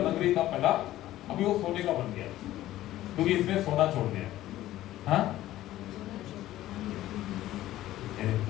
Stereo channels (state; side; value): quieter; right; 14.6 dB